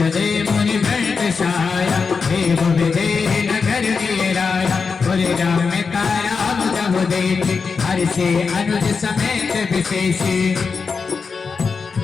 मुनि वैद सहाया देव विजय नगर राया बोले राम का राम जब देखे हर्षे अनुज समेत विशेषी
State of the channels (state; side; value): quieter; right; 5.2 dB